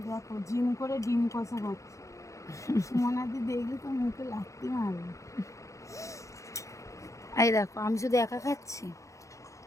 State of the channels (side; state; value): right; late; 0.15 ms